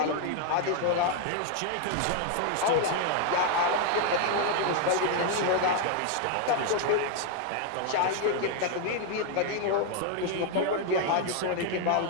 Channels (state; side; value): different; both; correlation 0.00